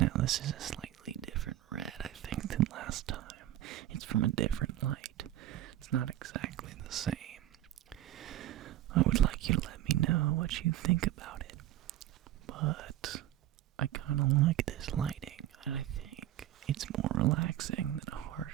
this is a slightly different red, I think, than last time. It's from a different light. It's not exactly the same. I would like you to let me know what you think about it. But I kind of like this lighting, and I think it's more relaxing than a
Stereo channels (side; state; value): left; quieter; 13.4 dB